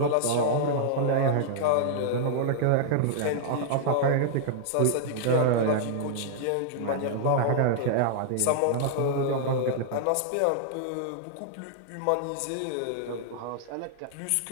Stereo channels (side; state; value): both; different; correlation -0.01